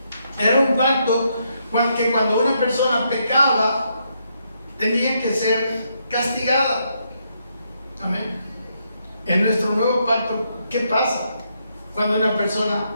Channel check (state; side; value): inverted; both; correlation -0.77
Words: Era un pacto que cuando una persona pecaba, tenía que ser castigada. Amén. En nuestro nuevo pacto, ¿qué pasa cuando una persona